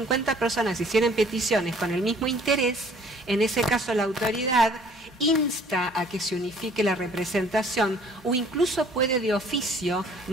personas hicieran peticiones con el mismo interés, en ese caso la autoridad insta a que se unifique la representación o incluso puede de oficio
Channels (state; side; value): normal; both; correlation 0.56